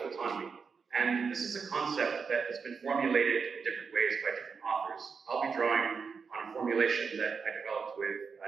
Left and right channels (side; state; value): left; quieter; 5.5 dB